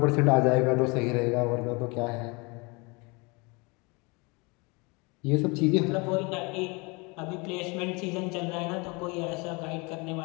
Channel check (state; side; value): quieter; right; 28.2 dB